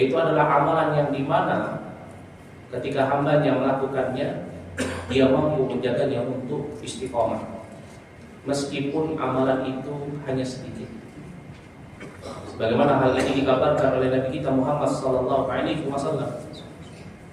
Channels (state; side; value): identical; both; correlation 1.00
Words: adalah amalan yang dimana ketika hamba-Nya melakukannya dia mampu menjaganya untuk istiqomah meskipun amalan itu hanya sedikit. Sebagaimana hal ini dikabarkan oleh Nabi kita Muhammad sallallahu alaihi wasallam